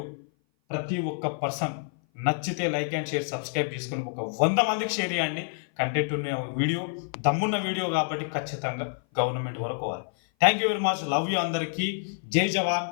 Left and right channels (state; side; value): silent; right; 56 dB below the other